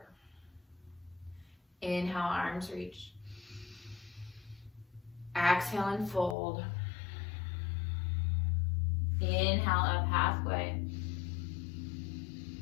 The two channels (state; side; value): drops out; right; at 6.4 s